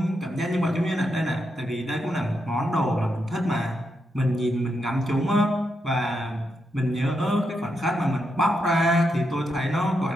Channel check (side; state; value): both; normal; correlation 0.83